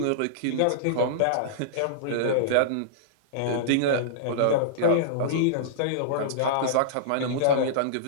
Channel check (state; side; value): different; both; correlation -0.02